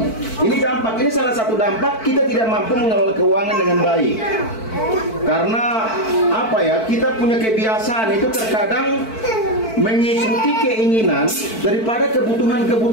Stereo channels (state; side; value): late; right; 4.5 ms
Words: Ini dampak, ini salah satu dampak kita tidak mampu mengelola keuangan dengan baik. Karena apa ya? Kita punya kebiasaan itu terkadang mengikuti keinginan daripada